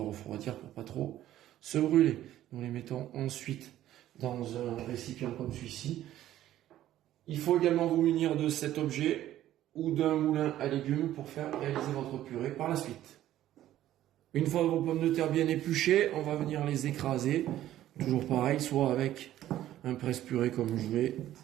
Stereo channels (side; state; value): left; quieter; 13.1 dB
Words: refroidir pour pas trop se brûler. Nous les mettons ensuite dans un récipient comme celui-ci. Il faut également vous munir de cet objet ou d'un moulin à légumes pour faire réaliser votre purée par la suite. Une fois vos pommes de terre bien épluchées, on va venir les écraser. Toujours pareil, soit avec un presse-purée comme je l'ai